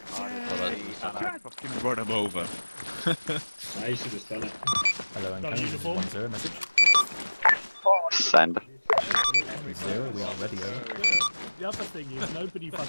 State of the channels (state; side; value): inverted; both; correlation -1.00